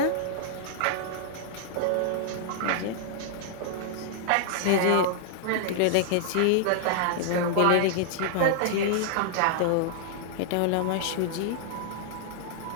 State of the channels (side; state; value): both; different; correlation -0.01